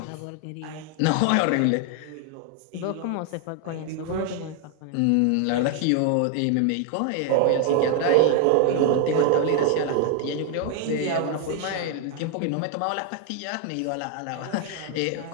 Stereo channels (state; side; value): different; both; correlation 0.00